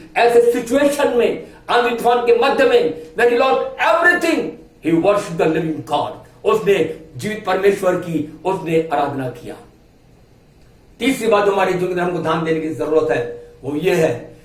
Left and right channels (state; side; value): identical; both; correlation 1.00